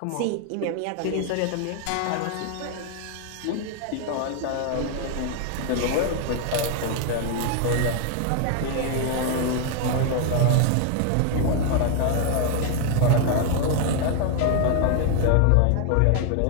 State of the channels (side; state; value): both; different; correlation 0.00